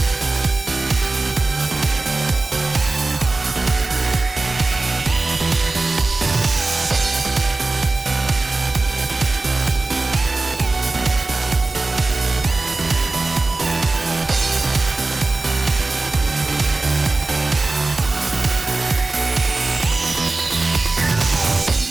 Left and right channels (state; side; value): quieter; left; 3.3 dB